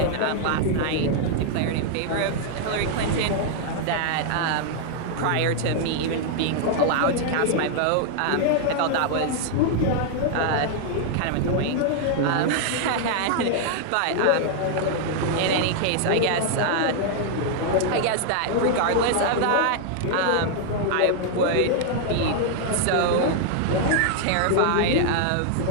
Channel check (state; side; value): different; both; correlation 0.00